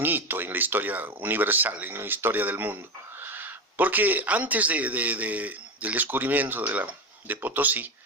hito en la historia universal, en la historia del mundo. Porque antes del descubrimiento de Potosí,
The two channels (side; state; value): both; normal; correlation 0.18